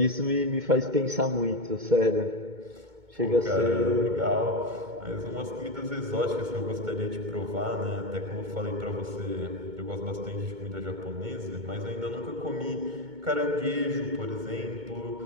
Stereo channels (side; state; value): left; late; 2.2 ms